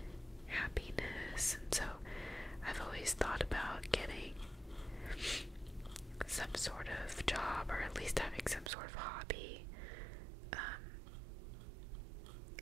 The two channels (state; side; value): drops out; left; at 8.7 s